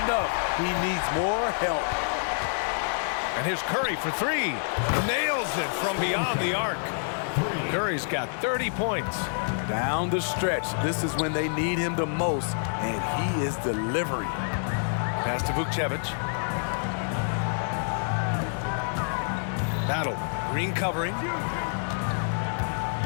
He needs more help. And here's Curry for 3. Nails it from beyond the arc. Curry's got 30 points. Down the stretch, this is when they need him the most, and he is delivering. Pass to Vukcevic. Battle. Green covering.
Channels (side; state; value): right; silent; digital silence